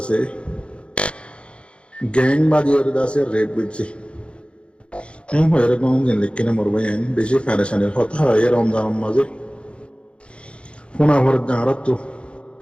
gang বাদি করে দাসে red বুঝছি M হয়ে কোন দিন লিখনে মরবাই আইন বেশি ফেরেশানের কথা হয় রমজান মাঝে কোনা ভর জারাত তো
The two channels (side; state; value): right; late; 0.058 ms